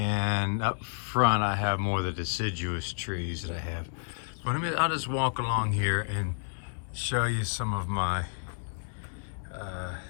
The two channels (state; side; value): silent; right; digital silence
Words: up front, I have more of the deciduous trees that I have. But I'll just walk along here and show you some of my